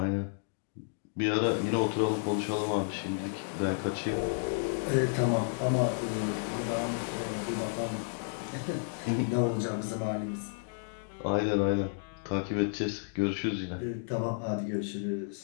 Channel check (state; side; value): silent; right; digital silence